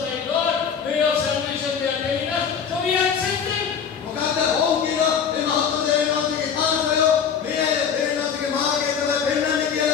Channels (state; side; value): quieter; right; 7.1 dB